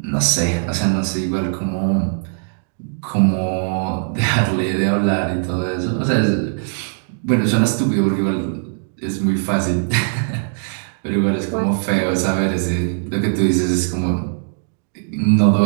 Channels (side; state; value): left; silent; 66 dB below the other